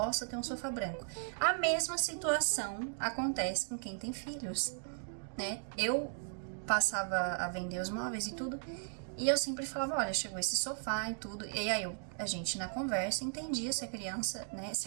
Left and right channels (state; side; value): silent; left; digital silence